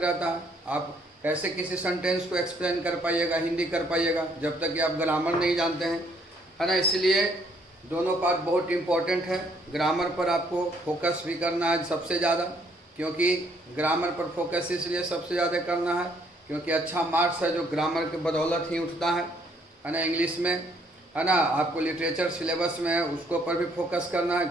है। आप कैसे किसी सेंटेंस को एक्सप्लेन कर पाइएगा, हिंदी कर पाइएगा, जब तक कि आप ग्रामर नहीं जानते हैं, है ना। इसलिए दोनों पार्ट बहुत इम्पोर्टेंट है। ग्रामर पर आपको फोकस भी करना है सबसे ज़्यादा, क्योंकि ग्रामर पर फोकस इसलिए सबसे ज़्यादा करना है क्योंकि अच्छा मार्क्स है जो ग्रामर के बदौलत ही उठता है ना। इंग्लिश में, है ना, आपको लिटरेचर सिलेबस में है, उसको पर भी फोकस करना है।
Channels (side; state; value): both; normal; correlation 0.66